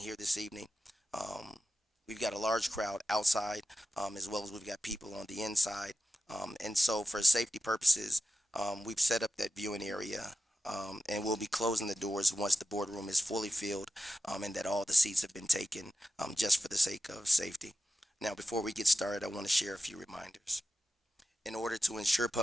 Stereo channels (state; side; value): normal; both; correlation 0.91